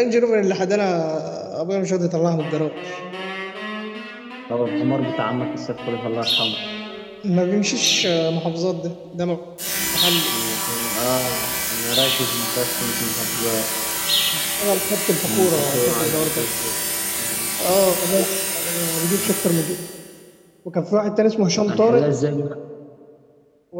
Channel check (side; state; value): both; identical; correlation 1.00